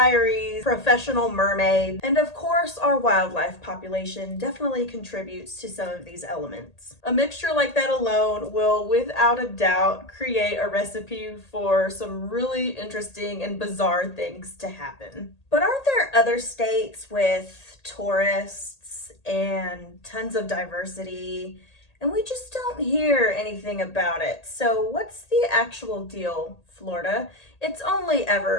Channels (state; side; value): late; right; 1.8 ms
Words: professional mermaids, and of course our wildlife population definitely contributes to some of these elements. A mixture like that alone will without a doubt create a recipe for some really interesting and bizarre things to happen. But aren't there other states with tourists and tons of diversity, and we just don't hear anything about it? So what's the actual deal, Florida? It's only